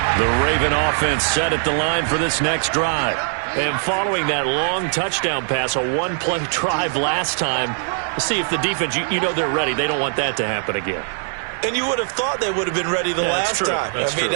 The Raven offense set at the line for this next drive. And following that long touchdown pass, a one-play drive last time, see if the defense, you know they're ready. They don't want that to happen again. And you would have thought they would have been ready the last time. That's true.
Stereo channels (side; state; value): left; silent; digital silence